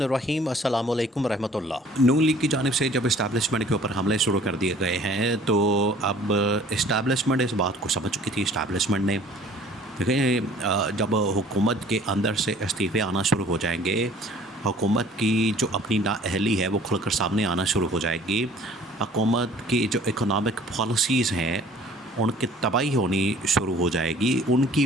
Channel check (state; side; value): normal; both; correlation 0.52